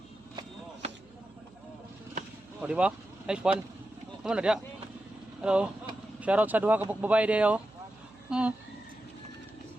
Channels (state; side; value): noise; right; hum, 26 dB below the sound